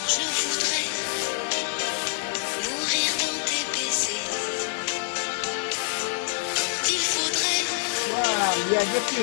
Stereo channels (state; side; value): silent; right; digital silence